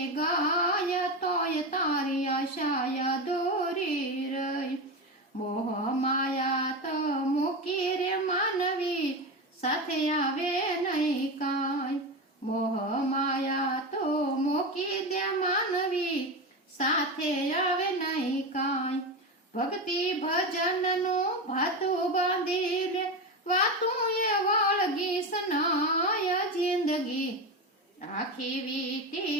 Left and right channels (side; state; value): both; normal; correlation 0.19